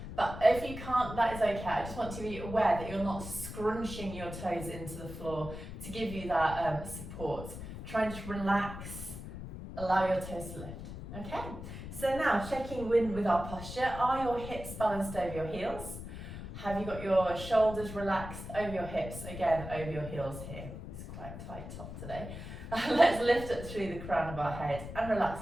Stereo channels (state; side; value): noise; left; rumble, 10 dB below the sound